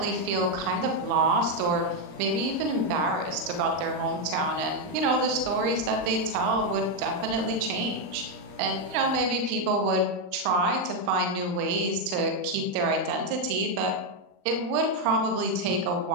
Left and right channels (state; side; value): late; left; 39 ms